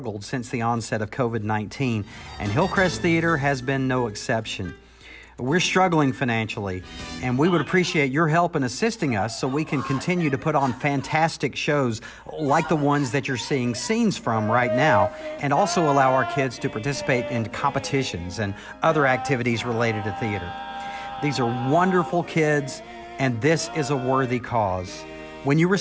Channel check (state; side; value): identical; both; correlation 1.00